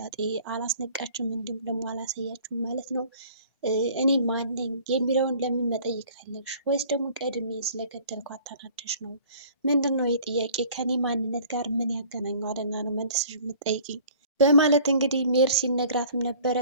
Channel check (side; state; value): both; inverted; correlation -0.51